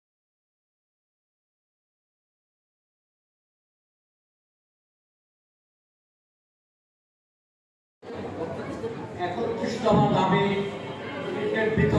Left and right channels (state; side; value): identical; both; correlation 1.00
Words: একত্রিশতম দাবি ক্রিকেট